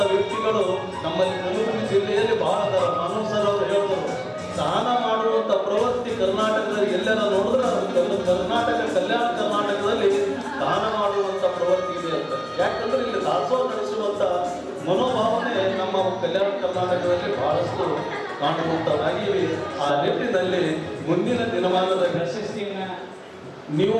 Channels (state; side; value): identical; both; correlation 1.00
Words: ವ್ಯಕ್ತಿಗಳು ನಮ್ಮಲ್ಲಿ ಕಲಬುರಗಿ ಜಿಲ್ಲೆಯಲ್ಲಿ ಬಹಳ ಅದಾರ. ಮಾನವ್ ಸರ್ ಅವರು ಹೇಳಿದ್ರು, ದಾನ ಮಾಡುವಂತ ಪ್ರವೃತ್ತಿ ಕರ್ನಾಟಕದಲ್ಲಿ ಎಲ್ಲರ ನೋಡಿದ್ರೆ ಕರ್ನಾಟಕ, ಕಲ್ಯಾಣ ಕರ್ನಾಟಕದಲ್ಲಿ ದಾನ ಮಾಡುವಂತ ಪ್ರವೃತ್ತಿ ಇದೆ ಅಂತ. ಯಾಕಂದ್ರೆ ಇಲ್ಲಿ ದಾಸೋಹ ನಡೆಸುವಂತ ಮನೋಭಾವನೆ ನಮ್ಮ ಕಲ್ಯಾಣ ಕರ್ನಾಟಕದಲ್ಲಿ ಬಹಳಷ್ಟು ಕಾಣುವಂತವಾಗಿವೆ. ಆ ನಿಟ್ಟಿನಲ್ಲಿ ಮುಂದಿನ ದಿನಮಾನದ ನೀವು